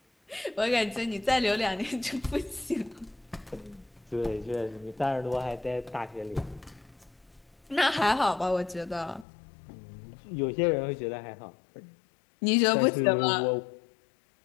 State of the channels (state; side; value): drops out; right; at 9.2 s